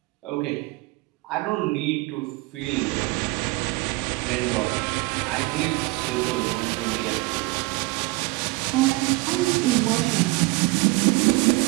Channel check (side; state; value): left; quieter; 23.2 dB